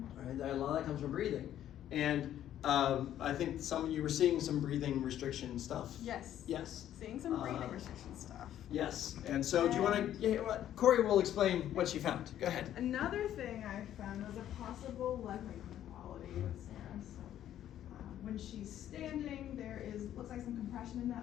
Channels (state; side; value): quieter; right; 11.4 dB